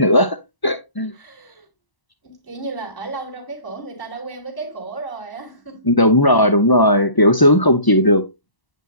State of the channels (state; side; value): late; right; 1.0 ms